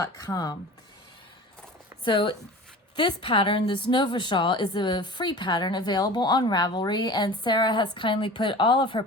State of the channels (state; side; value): normal; both; correlation 0.38